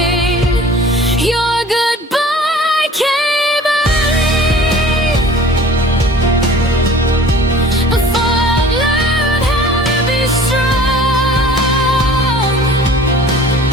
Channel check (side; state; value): both; normal; correlation 0.46